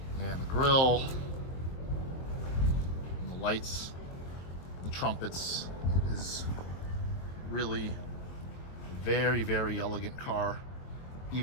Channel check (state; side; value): late; right; 23 ms